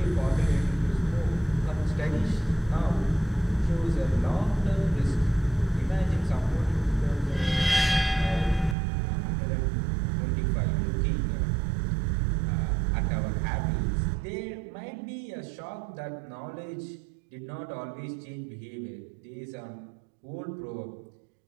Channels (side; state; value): left; drops out; at 8.8 s